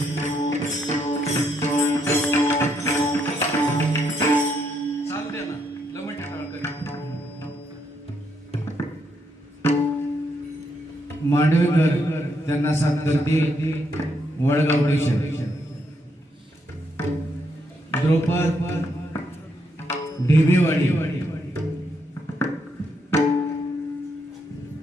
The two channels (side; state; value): both; normal; correlation 0.76